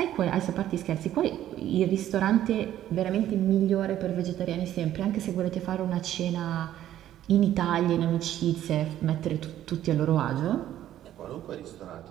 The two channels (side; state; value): left; quieter; 12.2 dB